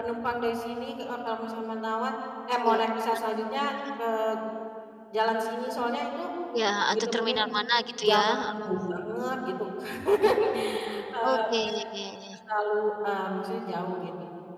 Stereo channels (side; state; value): both; identical; correlation 1.00